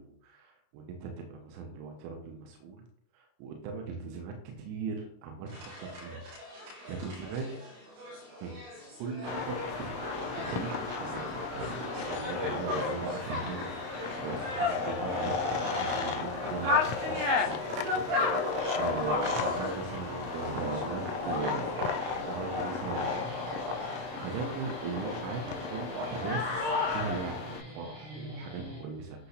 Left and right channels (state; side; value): late; left; 33 ms